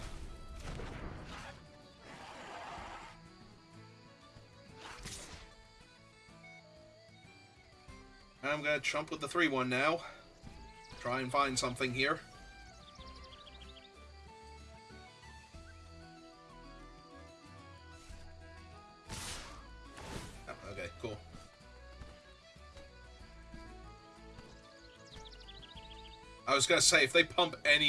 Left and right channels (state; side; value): identical; both; correlation 1.00